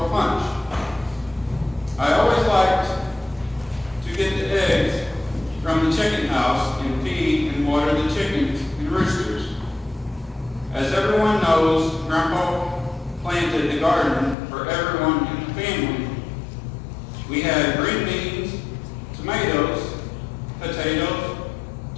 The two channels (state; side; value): drops out; right; at 14.4 s